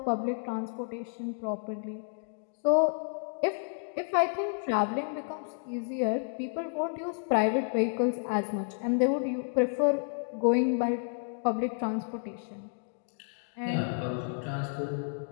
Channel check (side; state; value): right; silent; digital silence